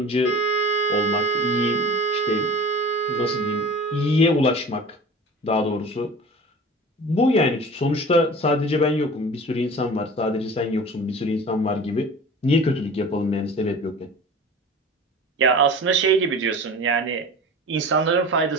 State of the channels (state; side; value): normal; both; correlation 0.39